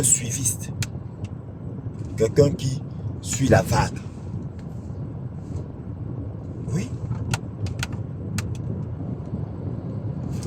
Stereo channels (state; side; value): identical; both; correlation 1.00